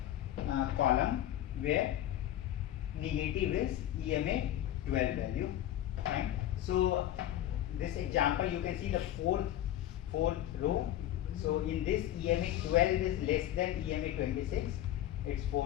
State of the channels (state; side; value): quieter; right; 12.7 dB